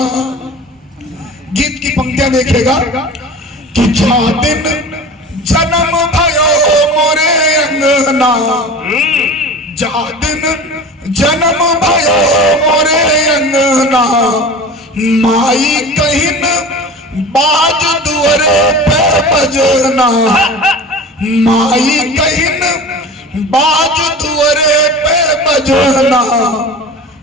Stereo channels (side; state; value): both; normal; correlation 0.36